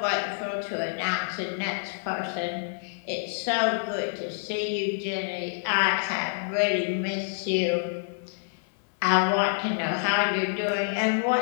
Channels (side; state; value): right; silent; 60 dB below the other